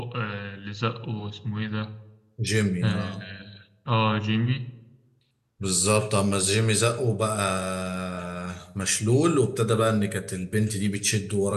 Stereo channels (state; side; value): identical; both; correlation 1.00